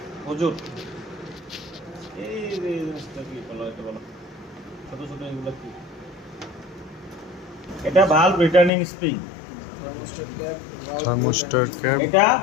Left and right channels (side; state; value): right; drops out; at 8.7 s